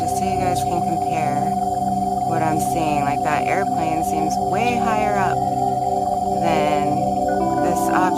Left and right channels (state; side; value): identical; both; correlation 1.00